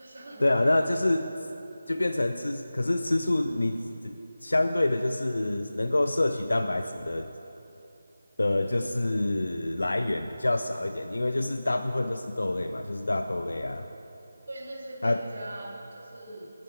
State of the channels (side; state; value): both; inverted; correlation -0.98